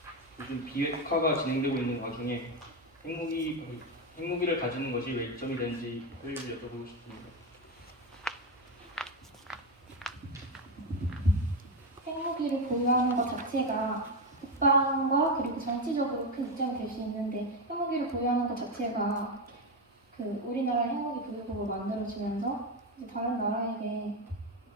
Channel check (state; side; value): normal; both; correlation 0.11